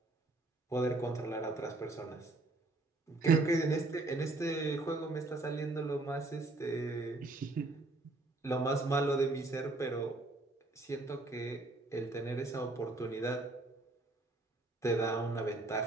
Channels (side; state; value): left; quieter; 3.0 dB